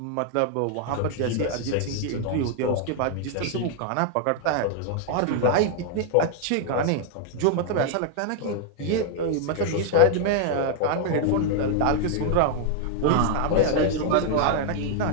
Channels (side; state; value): both; different; correlation 0.00